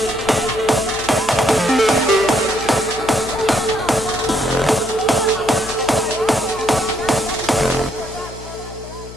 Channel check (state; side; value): noise; left; hum, 15 dB below the sound